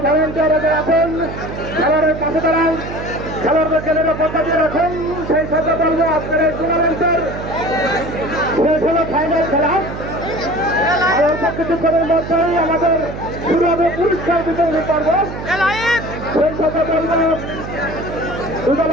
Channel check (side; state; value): right; noise; hum, 9 dB below the sound